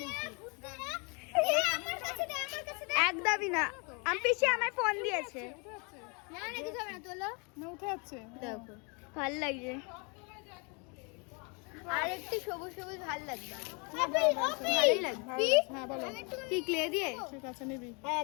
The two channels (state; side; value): quieter; right; 33.1 dB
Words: একদমই না। আমি পিসি আমার ফোন দিয়েছে। না, উঠে যাচ্ছে। দেখো ভাল লাগছে। আর একটু সবুজ সবুজ ভাল লাগবে। ভালোই লাগবে। হ্যাঁ বলো। কি ক্লে দিয়ে? ঠিক আছে, নিবি। হ্যাঁ